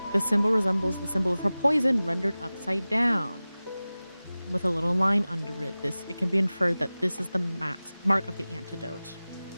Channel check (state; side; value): inverted; both; correlation -0.97